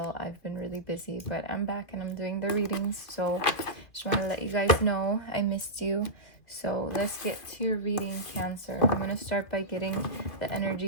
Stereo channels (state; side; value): late; right; 2.7 ms